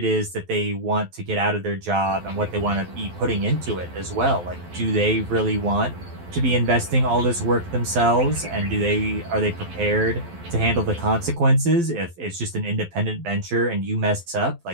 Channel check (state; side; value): late; left; 12 ms